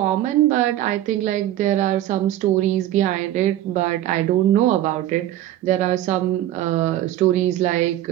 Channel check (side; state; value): left; quieter; 13.3 dB